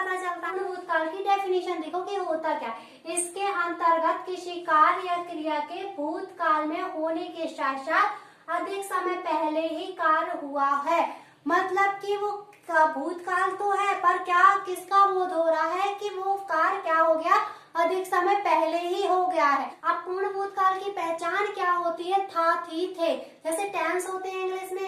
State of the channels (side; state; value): both; identical; correlation 1.00